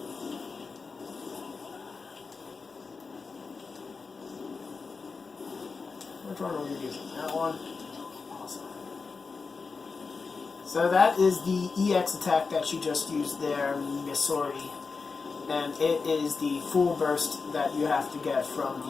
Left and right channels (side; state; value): right; quieter; 4.6 dB